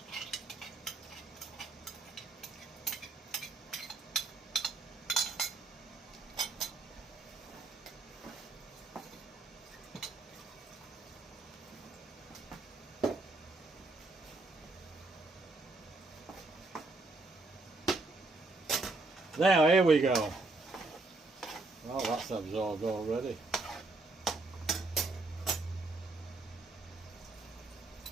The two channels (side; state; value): left; quieter; 3.3 dB